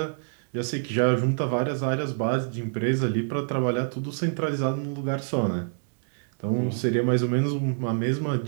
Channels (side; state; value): left; silent; 61 dB below the other